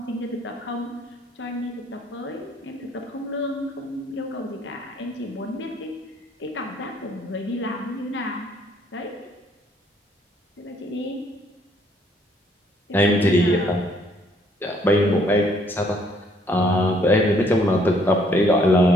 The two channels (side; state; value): both; normal; correlation 0.65